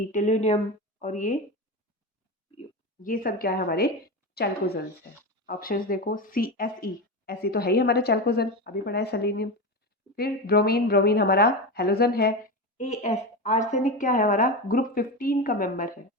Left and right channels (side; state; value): both; normal; correlation 0.20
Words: टेलुनियम, और ये सब क्या है? हमारे चैल्कोजेंस है। ऑप्शंस देखो, CSE, ऐसी तो है ही हमारे चैल्कोजेन, अभी पढ़ा है सेलेनियम। फिर ब्रोमीन, ब्रोमीन हमारा हेलोजन है। AS, आर्सेनिक क्या है? हमारा ग्रुप 15 का मेंबर है।